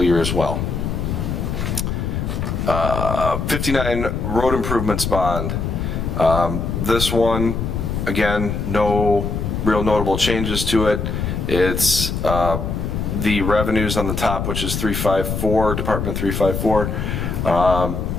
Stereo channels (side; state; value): left; noise; rumble, 2 dB below the sound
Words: year as well. 59 road improvements bond. This one, again, no real notable changes to it. It's the revenues on the top, which is 354, Department 354.